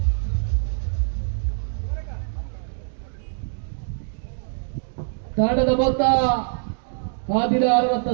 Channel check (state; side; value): silent; left; 63 dB below the other